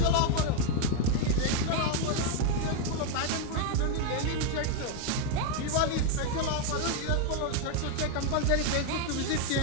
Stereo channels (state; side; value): different; both; correlation 0.01